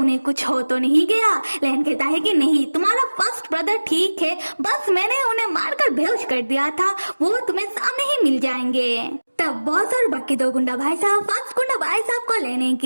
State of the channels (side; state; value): both; inverted; correlation -1.00